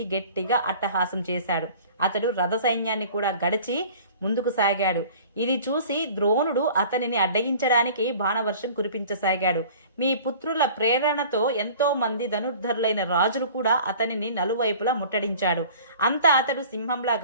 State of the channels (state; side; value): inverted; both; correlation -0.45